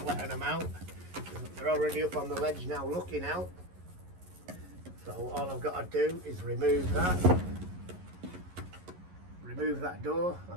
letting them out. They're already up on the ledge now looking out. So all I've got to do is remove that door,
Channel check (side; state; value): left; late; 11 ms